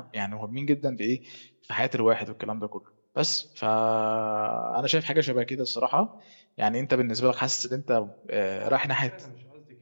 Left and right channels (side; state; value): both; inverted; correlation -1.00